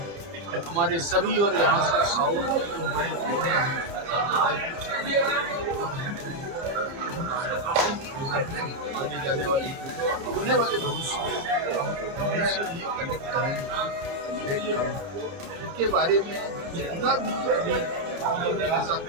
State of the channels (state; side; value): late; left; 31 ms